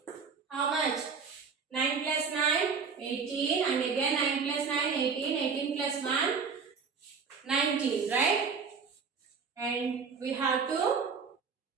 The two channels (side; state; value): left; quieter; 5.5 dB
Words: How much? 9 plus 9, 18, and again 9 plus 9, 18, 18 plus 1, 19, right? And we have to